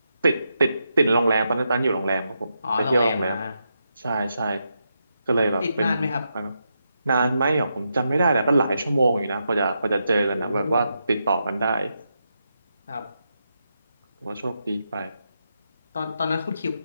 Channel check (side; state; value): both; inverted; correlation -0.84